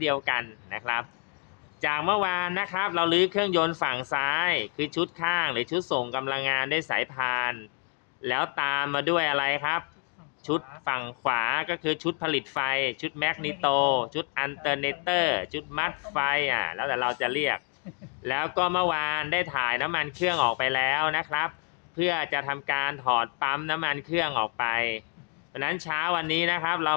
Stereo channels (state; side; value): quieter; right; 38.2 dB